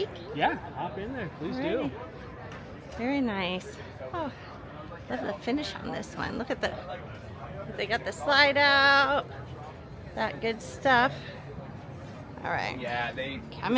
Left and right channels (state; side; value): identical; both; correlation 1.00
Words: Yeah, hop in there. Please do. Very nice. Oh, love the finish on this one. Look at the, they got the slide out. That good stuff. All right. Yeah, they